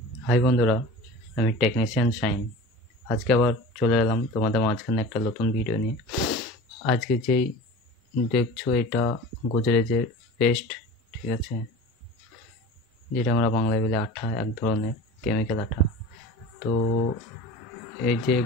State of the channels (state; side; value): normal; both; correlation 0.36